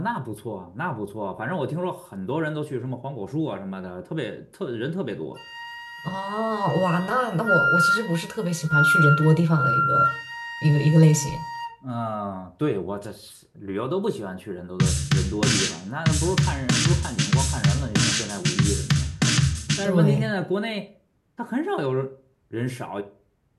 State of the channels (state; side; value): identical; both; correlation 1.00